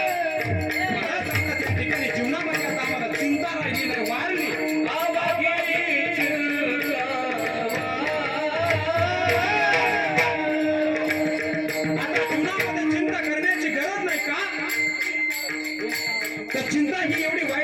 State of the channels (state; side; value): noise; left; hum, 29 dB below the sound